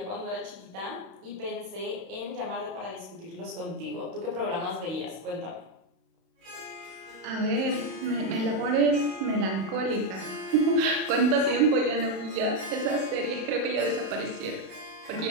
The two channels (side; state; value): left; late; 31 ms